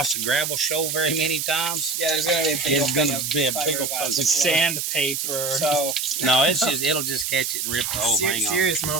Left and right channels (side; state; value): right; noise; hiss, 2 dB below the sound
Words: the gravel shoal very many times, Yeah, there's gonna be a big it's going to be a big old Sandpaper. So No, it'll just catch it and rip the whole thing off. serious